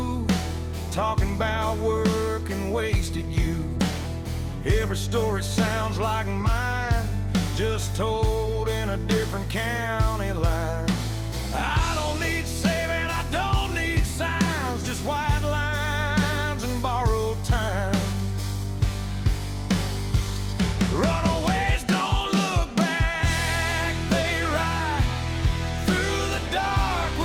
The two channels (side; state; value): both; identical; correlation 1.00